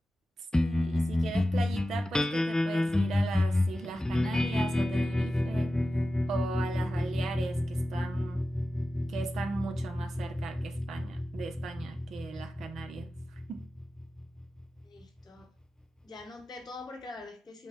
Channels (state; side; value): normal; both; correlation 0.93